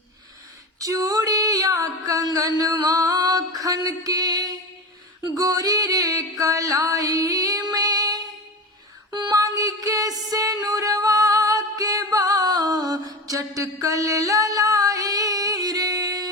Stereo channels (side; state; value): both; normal; correlation 0.25